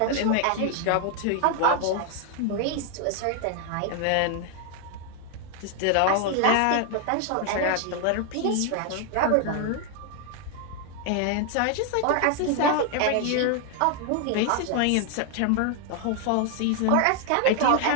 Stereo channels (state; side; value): different; both; correlation 0.00